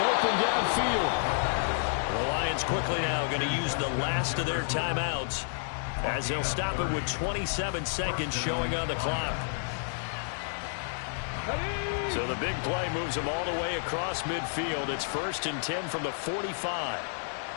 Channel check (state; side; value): silent; right; 58 dB below the other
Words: downfield. The Lions quickly now going to use the last of their timeouts as they'll stop it with 27 seconds showing on the clock. So the big play moves them all the way across midfield. It's 1st and 10 from the 45.